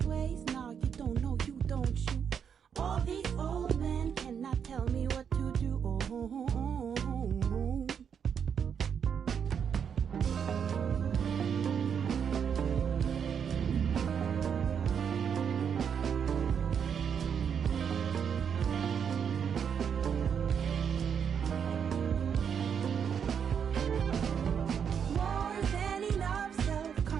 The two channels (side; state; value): left; quieter; 7.4 dB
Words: ways, now you don't know, you don't you. All these old men cannot tell me what to do. Oh, oh, oh, oh, oh. More than enough